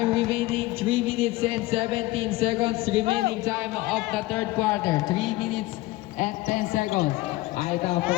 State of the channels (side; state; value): right; quieter; 19.0 dB